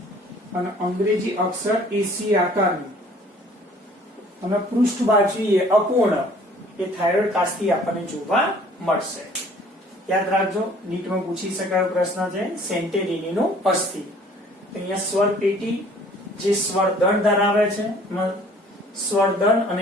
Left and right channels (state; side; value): normal; both; correlation 0.54